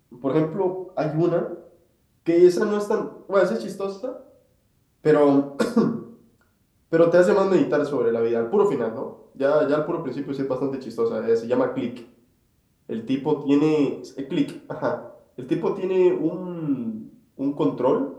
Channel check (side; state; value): both; identical; correlation 1.00